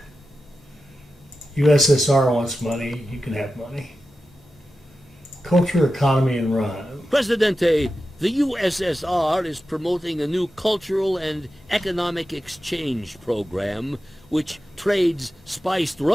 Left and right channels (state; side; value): normal; both; correlation 0.92